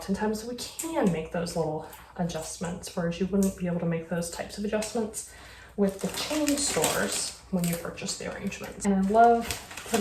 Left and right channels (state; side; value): identical; both; correlation 1.00